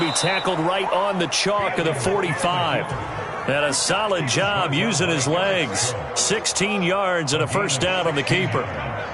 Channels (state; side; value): identical; both; correlation 1.00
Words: tackled right on the chalk of the 45. And a solid job using his legs. 16 yards and a first down on the keeper.